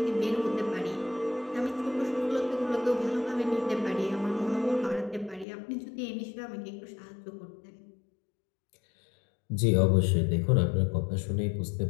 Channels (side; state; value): right; drops out; at 5.5 s